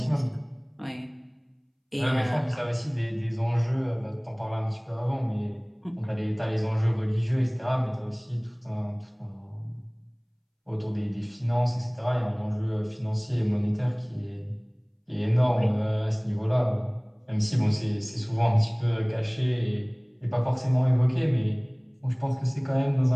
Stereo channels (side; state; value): both; identical; correlation 1.00